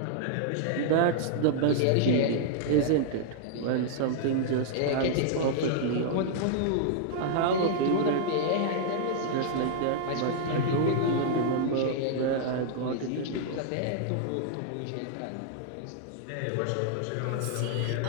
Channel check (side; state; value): both; different; correlation -0.01